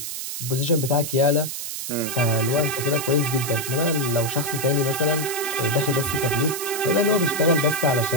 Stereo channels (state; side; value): noise; right; hiss, 6 dB below the sound